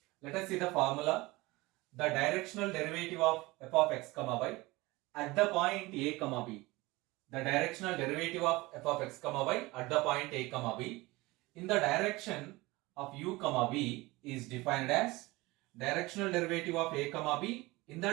Let us see the formula. The directional derivative of f of x comma y at the point a comma b. The directional derivative of f of x comma y at the point a comma b in the direction of u comma b is defined as directional derivative of a comma b in the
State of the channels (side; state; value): left; quieter; 21.4 dB